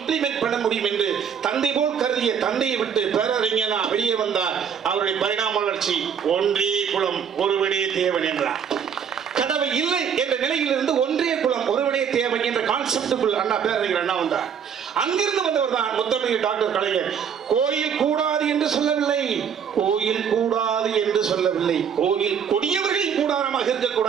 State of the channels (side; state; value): left; quieter; 7.6 dB